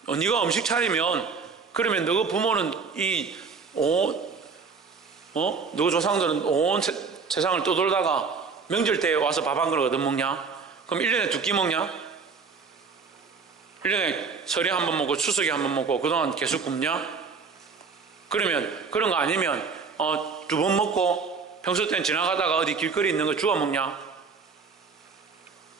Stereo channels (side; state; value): left; quieter; 5.1 dB